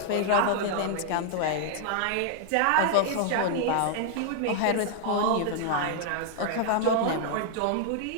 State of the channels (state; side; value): different; both; correlation 0.00